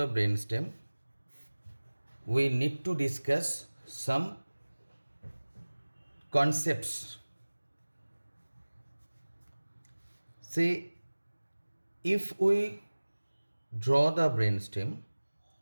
brainstem, we need to discuss some concepts. Say, if we draw the brainstem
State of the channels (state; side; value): inverted; both; correlation -1.00